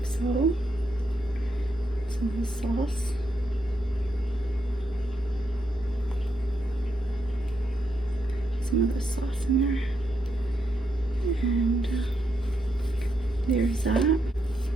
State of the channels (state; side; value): normal; both; correlation 0.80